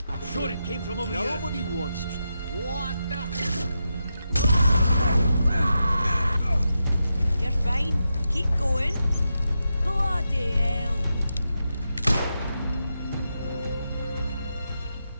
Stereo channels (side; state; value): both; inverted; correlation -0.87